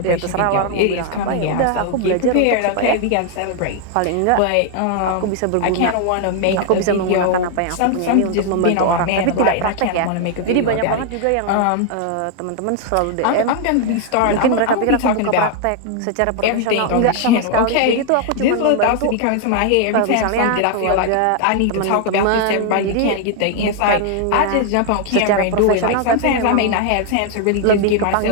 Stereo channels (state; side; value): different; both; correlation 0.00